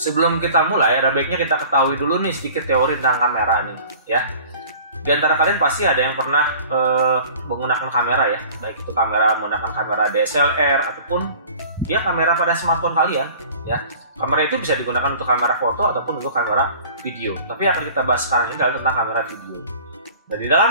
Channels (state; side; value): inverted; both; correlation -0.46